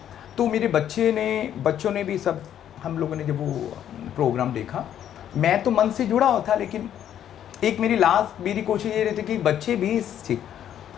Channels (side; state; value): right; quieter; 10.3 dB